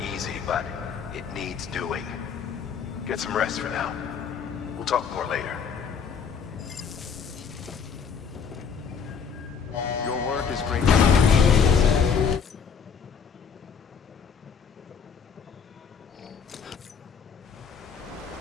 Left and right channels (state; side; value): quieter; right; 6.4 dB